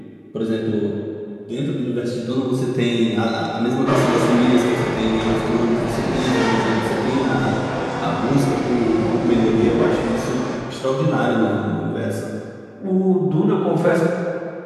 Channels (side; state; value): both; identical; correlation 1.00